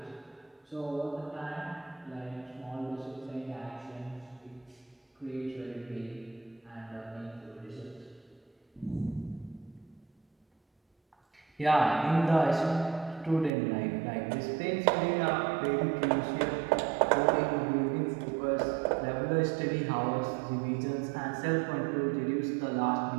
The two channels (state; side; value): drops out; left; at 13.5 s